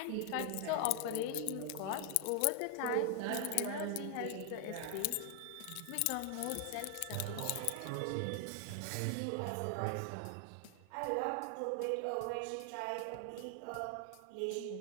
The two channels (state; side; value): different; both; correlation 0.00